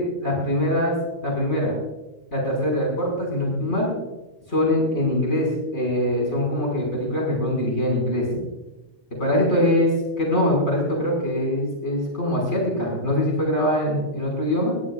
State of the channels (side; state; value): both; normal; correlation -0.16